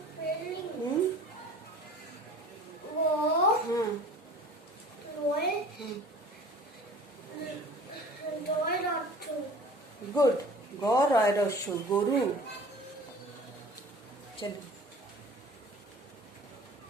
গুড, গরু। চলো,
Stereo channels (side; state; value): both; normal; correlation 0.45